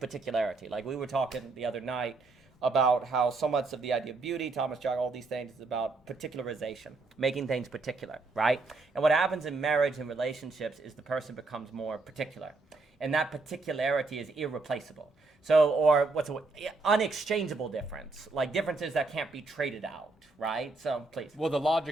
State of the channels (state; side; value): quieter; left; 3.6 dB